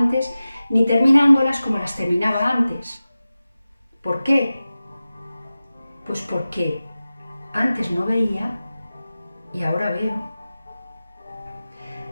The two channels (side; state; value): both; inverted; correlation -0.95